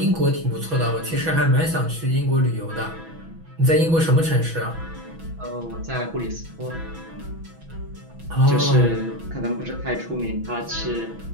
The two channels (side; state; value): left; late; 6.1 ms